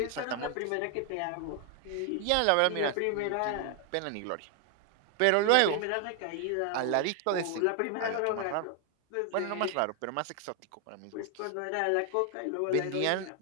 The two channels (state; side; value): different; both; correlation 0.00